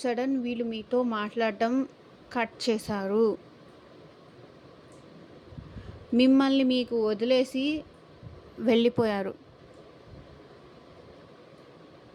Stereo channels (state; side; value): identical; both; correlation 1.00